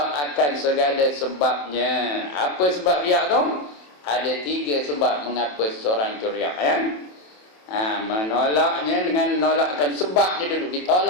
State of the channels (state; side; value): late; right; 27 ms